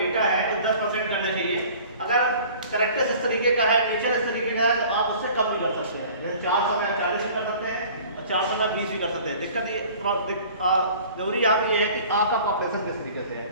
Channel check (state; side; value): inverted; both; correlation -0.47